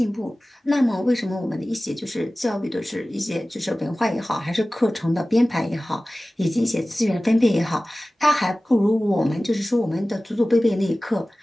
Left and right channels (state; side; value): normal; both; correlation 0.97